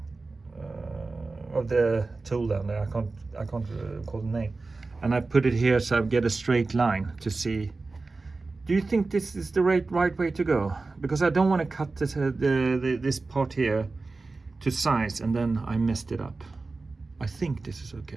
tool down there. I can't call the name. And I put it here so I get a straight line to see. Do you think this is the right way to go? Because I don't want to cut this part here to size and then I messed it up. I think this is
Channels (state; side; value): quieter; left; 3.7 dB